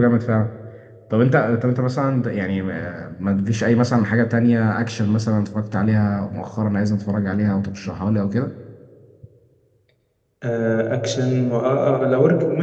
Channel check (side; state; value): both; identical; correlation 1.00